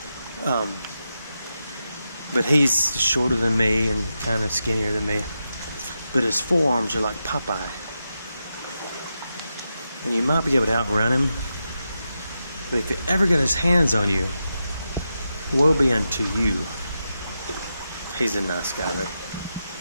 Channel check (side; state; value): both; inverted; correlation -0.88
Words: But he's shorter than me and kind of skinnier than me. But his forearms are like Popeye. And you might be able to outrun him. But if he ever got his hands on you, woe be unto you. He's a nice guy though.